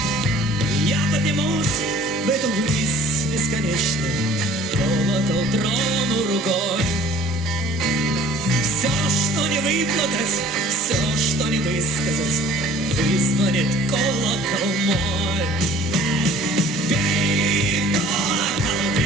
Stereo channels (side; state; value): both; normal; correlation 0.50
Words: Я поднимусь в эту высь бесконечную, колокол трону рукой. Все, что не выплакать, все, что не высказать, вызвонит колокол мой. Бей, колокол,